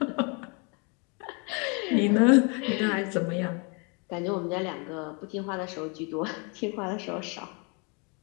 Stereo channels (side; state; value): right; quieter; 33.6 dB